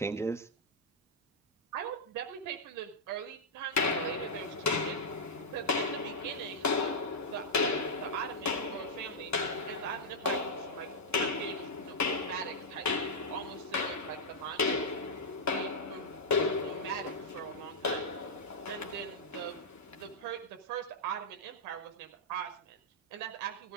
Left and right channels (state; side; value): normal; both; correlation -0.07